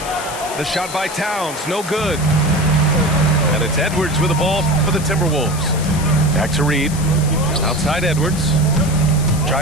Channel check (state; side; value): noise; left; hiss, 12 dB below the sound